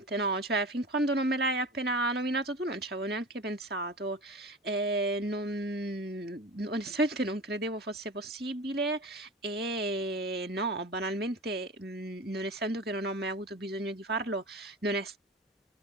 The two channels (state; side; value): normal; both; correlation 0.31